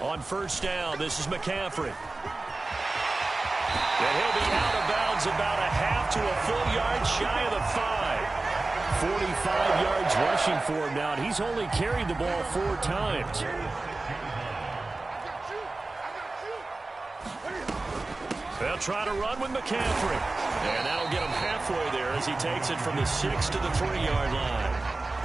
On 1st down, this is McCaffrey. And he'll be out of bounds about a half to a full yard shy of the 5. 45 yards rushing for him now, and he's only carried the ball 4 times. They'll try to run with McCaffrey. And that'll get him halfway there as he takes it from the 6 to the 3-yard line.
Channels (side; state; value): left; quieter; 3.2 dB